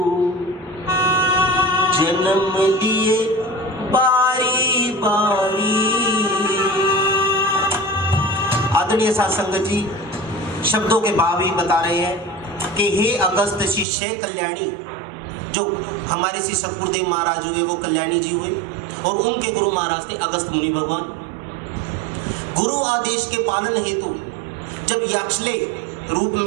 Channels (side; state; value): left; drops out; at 13.9 s